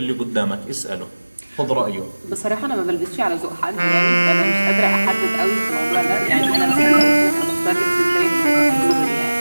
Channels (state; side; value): inverted; both; correlation -1.00